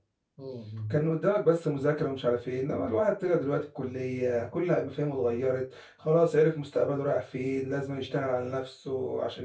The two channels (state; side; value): identical; both; correlation 1.00